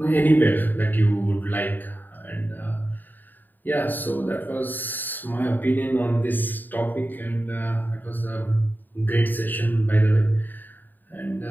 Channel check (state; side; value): late; right; 0.089 ms